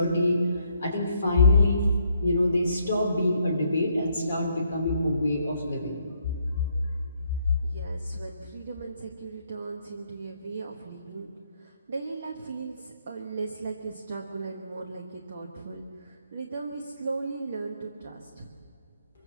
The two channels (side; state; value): both; inverted; correlation -0.72